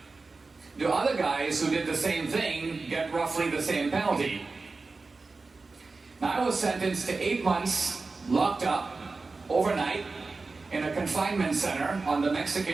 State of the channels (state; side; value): quieter; left; 3.9 dB